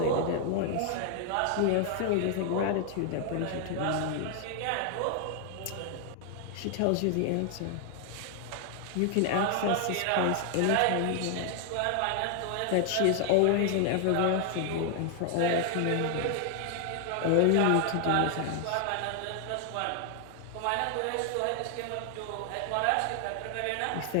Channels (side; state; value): both; different; correlation 0.00